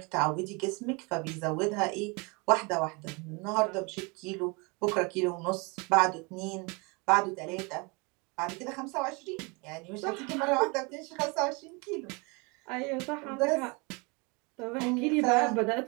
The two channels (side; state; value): left; quieter; 29.3 dB